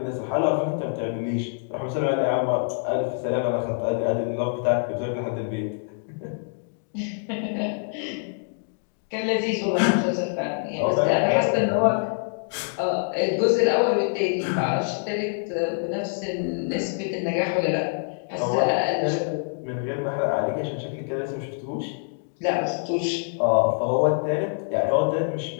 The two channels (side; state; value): right; silent; digital silence